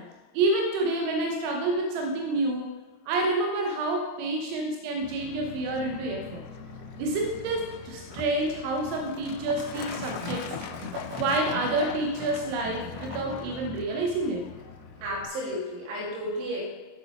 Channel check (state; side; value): late; left; 23 ms